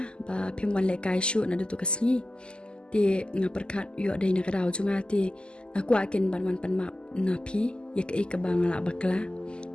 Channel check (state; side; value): late; right; 0.049 ms